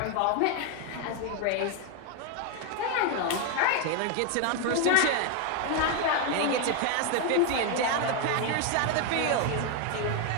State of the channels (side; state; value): both; different; correlation 0.01